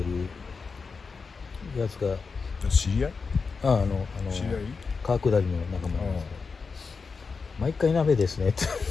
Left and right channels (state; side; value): quieter; right; 4.9 dB